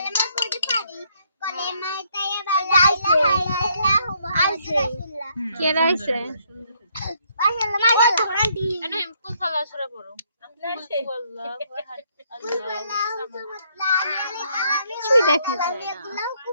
পড়তে পারি কলেমা তাইয়্যিবা লা ইলাহা ইল্লাল্লাহু মুহাম্মাদুর রাসূলুল্লাহ কে রাইছে মাশাআল্লাহ আন্টি এনে কুল সালা সূরা পড়ো কিছুই দেখা যায়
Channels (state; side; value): inverted; both; correlation -0.70